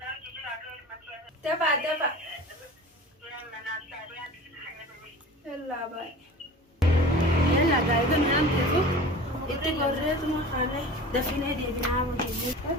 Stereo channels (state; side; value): normal; both; correlation 0.38